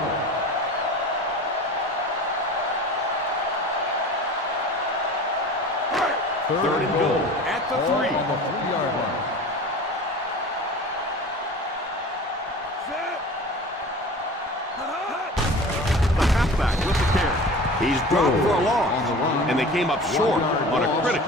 Third and goal at the 3. On the 3-yard line. The halfback with the carry. He's dropped for a loss, and they came up short on a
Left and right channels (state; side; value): normal; both; correlation 0.38